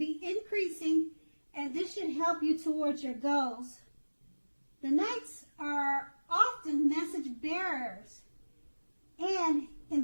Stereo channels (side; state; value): both; inverted; correlation -1.00